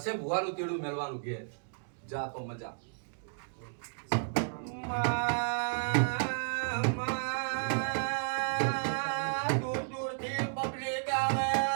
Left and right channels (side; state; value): left; silent; digital silence